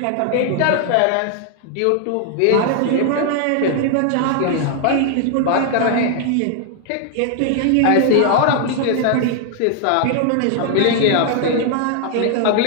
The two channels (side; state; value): both; different; correlation 0.00